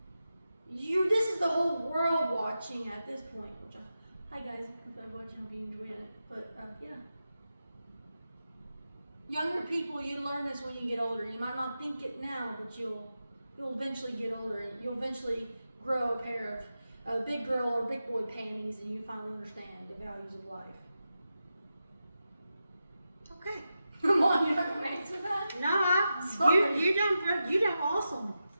this is the whole world watching at this point. Hi guys, if I'm watching, hope you enjoyed it. But yeah. Younger people, you learn this when you get older. You might not think it now, but you'll eventually get older and you'll eventually grow a pair of big girl or big boy panties, and you finally understand the values of life. Okay. Come on, you're not gonna answer that? No, you done awesome.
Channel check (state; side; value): inverted; both; correlation -0.90